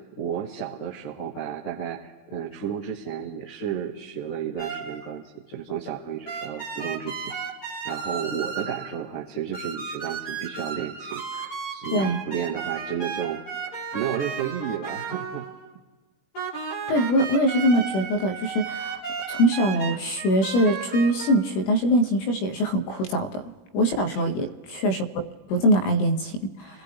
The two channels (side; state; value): right; late; 21 ms